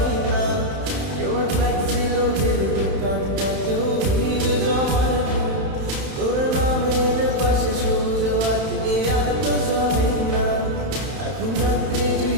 না। কেউ আর ফ্লেক্সি লোডের দোকানটাতেও ভিড় জমায় না। তোর নামের পাশে সবুজ বাতি আর তো জ্বলে না। এখন রাত্রি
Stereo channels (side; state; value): left; late; 31 ms